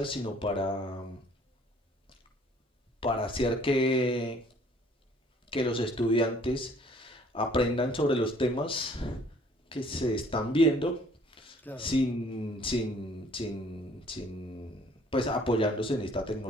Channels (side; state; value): both; normal; correlation 0.57